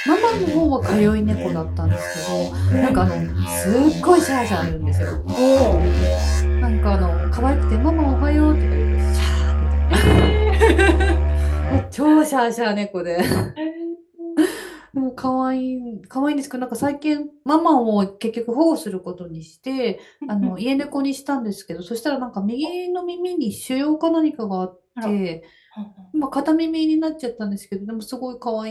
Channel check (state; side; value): identical; both; correlation 1.00